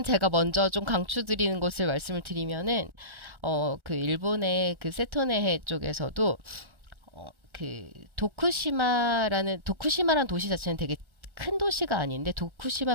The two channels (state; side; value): late; left; 1.3 ms